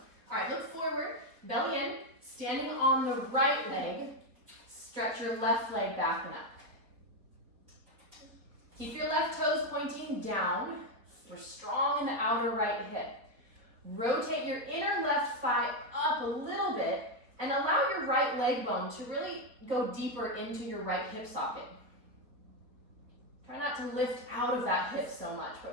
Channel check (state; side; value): late; left; 4.2 ms